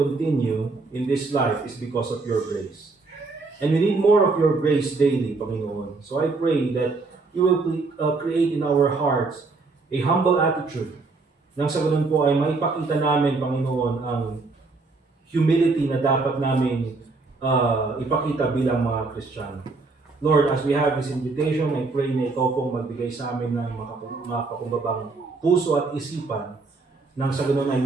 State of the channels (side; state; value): left; quieter; 3.8 dB